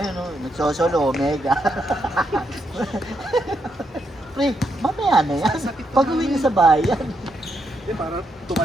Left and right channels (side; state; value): both; normal; correlation 0.80